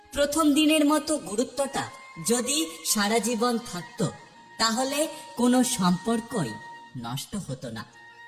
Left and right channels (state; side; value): identical; both; correlation 1.00